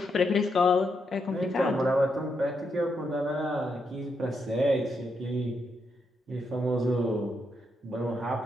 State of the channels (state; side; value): normal; both; correlation 0.81